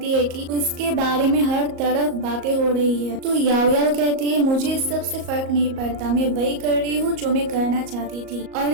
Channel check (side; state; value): left; late; 38 ms